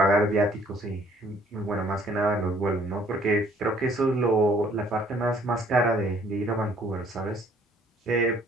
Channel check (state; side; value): normal; both; correlation 0.60